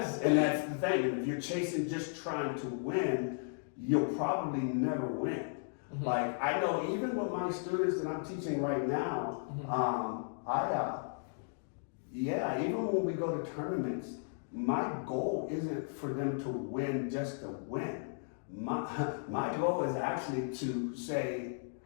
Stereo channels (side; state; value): right; silent; digital silence